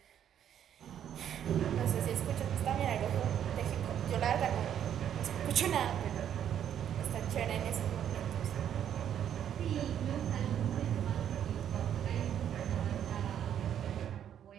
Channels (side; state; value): left; quieter; 9.7 dB